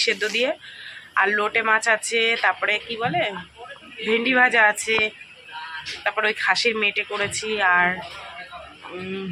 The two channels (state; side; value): identical; both; correlation 1.00